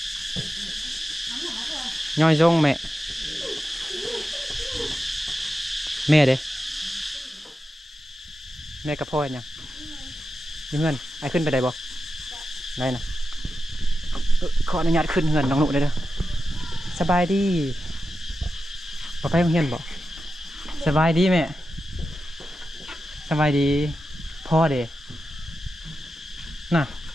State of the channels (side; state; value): both; normal; correlation 0.91